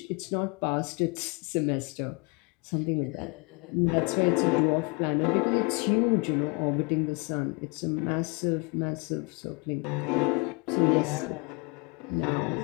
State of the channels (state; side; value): quieter; right; 31.5 dB